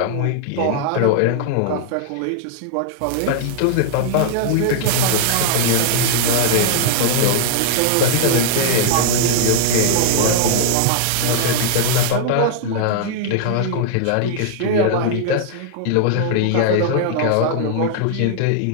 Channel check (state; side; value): different; both; correlation -0.01